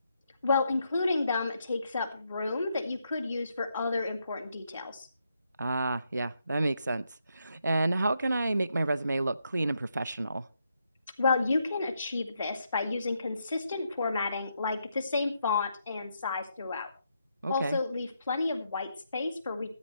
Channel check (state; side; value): inverted; both; correlation -0.79